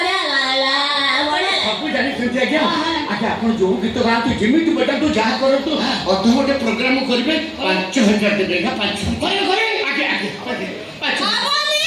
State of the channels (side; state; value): both; identical; correlation 1.00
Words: ଲାଗଲା ବଢିଆ ସବୁ ଜାଣିଛନ୍ତି ଆଜ୍ଞା ଆଜ୍ଞା ଆପଣ ଯୋଉ ଗୀତ ଗାଆନ୍ତୁ ଯେମିତି ବଜାନ୍ତୁ ଯାହା କରନ୍ତୁ ଅଧଘଣ୍ଟେ ପ୍ରୋଗ୍ରାମ କରିବେ 5,000 ଦେବେ ନା 5,000 କରିବେ କରିବେ ଆଜ୍ଞା ଆଜ୍ଞା 5,000